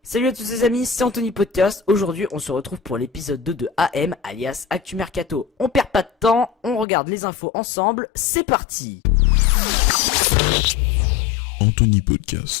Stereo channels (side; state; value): right; drops out; at 6.9 s